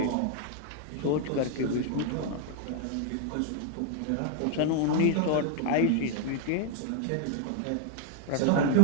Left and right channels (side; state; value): both; different; correlation 0.00